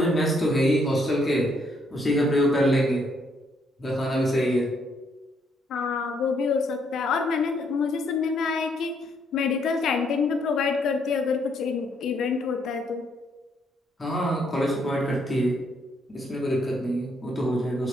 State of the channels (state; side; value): normal; both; correlation 0.72